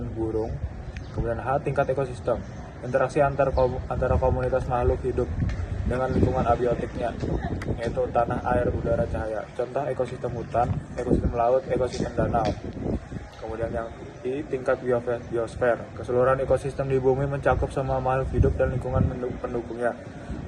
burung. Kemudian H. Tingkat ekosistem. Interaksi antara komunitas makhluk hidup dengan lingkungan abiotiknya, yaitu tanah, air, udara, cahaya. Contoh ekosistem hutan, ekosistem laut, ekosistem danau. Kemudian yang I. Tingkat biosfer. Keseluruhan ekosistem di bumi mencakup semua makhluk hidup dan lingkungan pendukungnya.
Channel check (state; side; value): identical; both; correlation 1.00